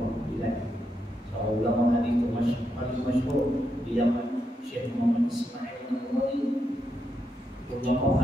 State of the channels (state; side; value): normal; both; correlation 0.82